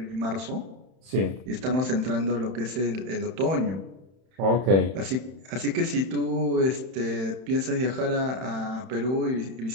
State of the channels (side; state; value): left; late; 31 ms